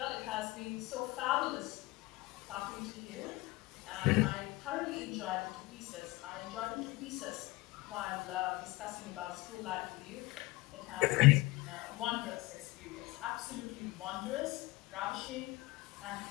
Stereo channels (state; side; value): quieter; right; 21.1 dB